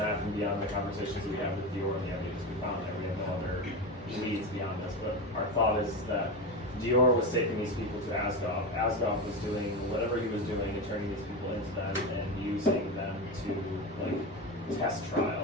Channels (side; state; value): both; normal; correlation 0.19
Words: and beyond the conversations we have with Dior and the ideas we found there, we have no other leads beyond this. But our thought is that Dior was taking these people to Asgoth. Asgoth was doing whatever he was doing and turning these people into them and using them to like test